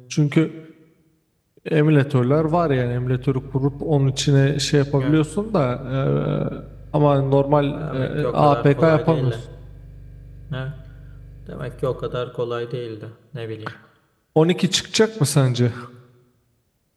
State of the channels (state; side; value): identical; both; correlation 1.00